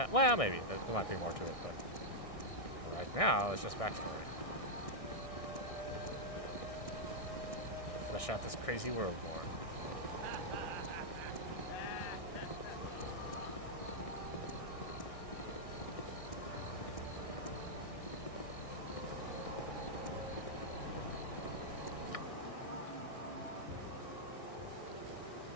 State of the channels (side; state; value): right; late; 1.6 ms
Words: maybe. There might be more to it, but right now, it's just backstory. Flesh out this crazy world more.